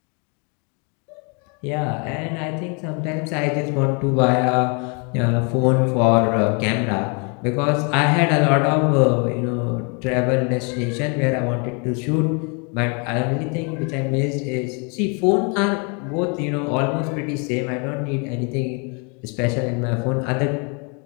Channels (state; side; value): quieter; right; 34.8 dB